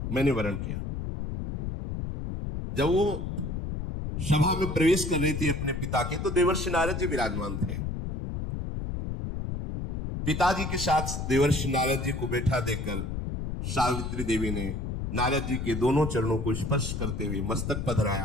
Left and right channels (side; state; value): left; noise; rumble, 4 dB below the sound